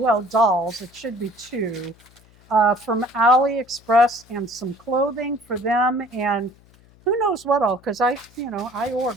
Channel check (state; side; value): noise; left; hum, 28 dB below the sound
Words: dolls, it should be two, from AliExpress and some clothing for them and who knows what all, because I